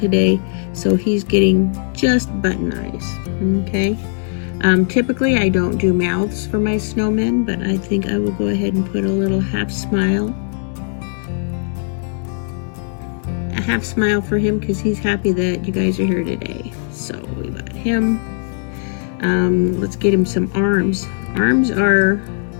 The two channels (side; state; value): right; silent; 67 dB below the other